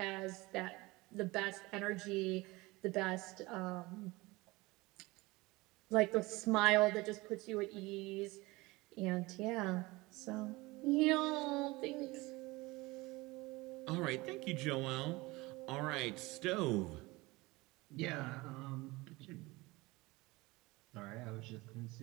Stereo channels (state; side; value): quieter; left; 22.1 dB